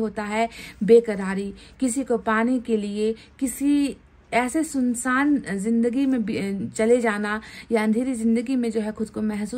है बेकरारी, किसी को पाने के लिए किसी ऐसे सुनसान जिंदगी में चले जाना या अंधेरी जिंदगी में जो है खुद को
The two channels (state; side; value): identical; both; correlation 1.00